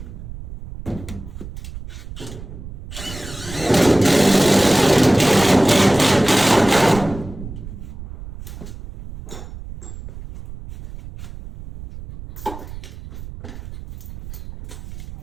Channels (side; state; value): right; noise; rumble, 13 dB below the sound